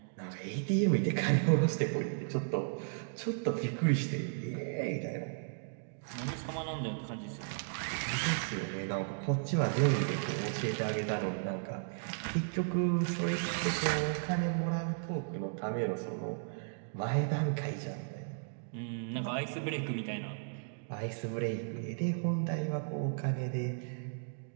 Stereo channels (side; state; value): left; silent; digital silence